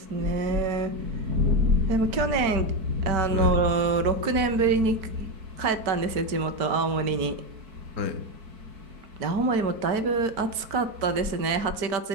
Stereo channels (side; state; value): left; late; 4.5 ms